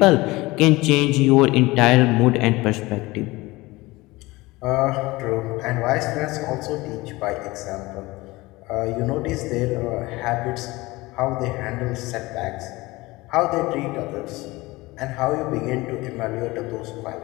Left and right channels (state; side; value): quieter; right; 21.1 dB